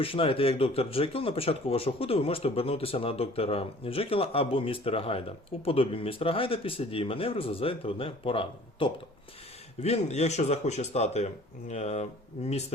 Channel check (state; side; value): normal; both; correlation 0.50